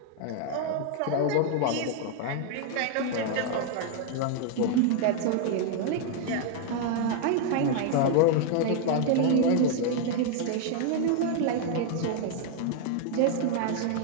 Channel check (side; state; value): both; different; correlation 0.00